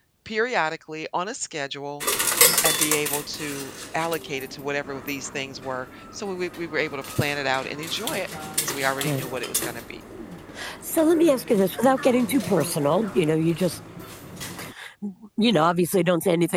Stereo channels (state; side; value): identical; both; correlation 1.00